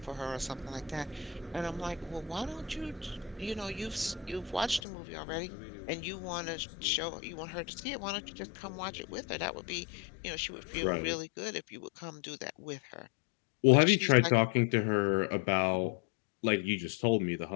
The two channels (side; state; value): right; drops out; at 4.8 s